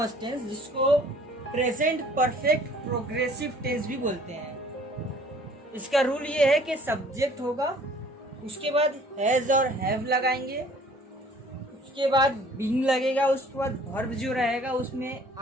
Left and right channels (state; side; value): normal; both; correlation 0.54